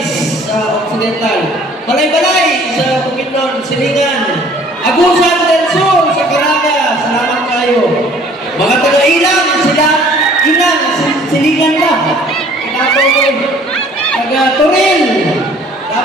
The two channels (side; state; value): both; normal; correlation 0.54